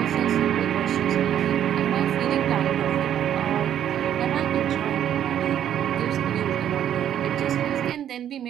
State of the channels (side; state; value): left; quieter; 10.3 dB